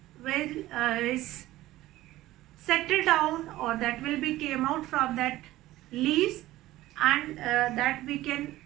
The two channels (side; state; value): left; quieter; 16.2 dB